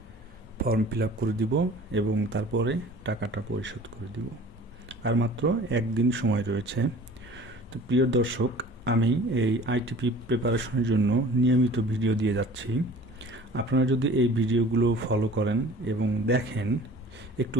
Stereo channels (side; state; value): both; normal; correlation 0.46